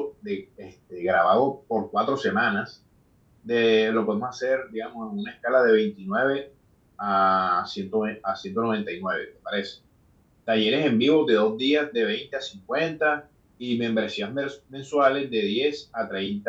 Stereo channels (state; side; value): identical; both; correlation 1.00